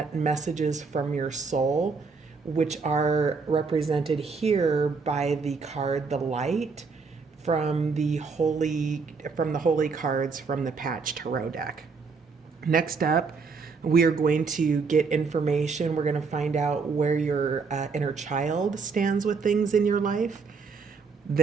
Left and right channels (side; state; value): left; quieter; 4.8 dB